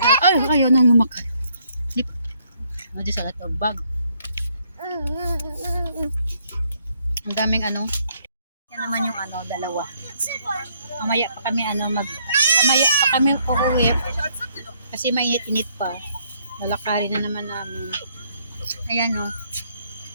Ayaw nang lumakad. Hindi sa lahat bag. Ang daming ano. Yan naman yung ano, dalawa. Mamaya pa kami uuwi. Kasi mainit-init pa. Lalakarin na naman namin. Ayan o.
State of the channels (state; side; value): inverted; both; correlation -0.69